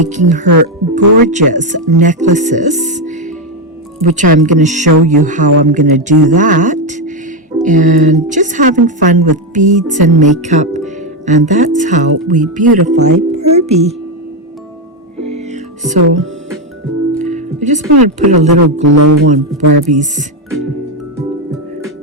her gorgeous necklaces, which I'm going to show you how I'm going to do that. And just having fun with beads and makeup. And that's how we beautify Barbie. So I just want to put a little glow on Barbie's.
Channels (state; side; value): normal; both; correlation 0.07